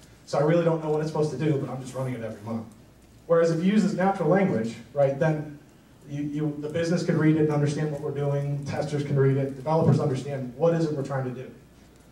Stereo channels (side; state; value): both; identical; correlation 1.00